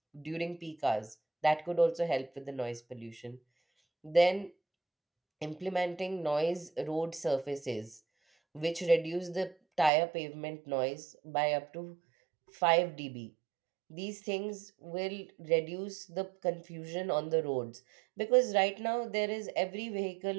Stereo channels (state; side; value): drops out; left; at 9.9 s